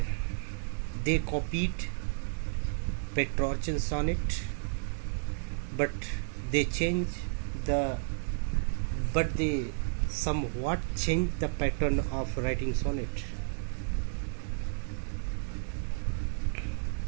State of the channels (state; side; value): silent; left; 56 dB below the other